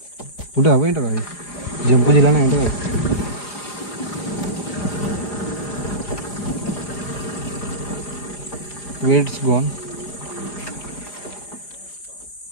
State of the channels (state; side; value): late; right; 4.9 ms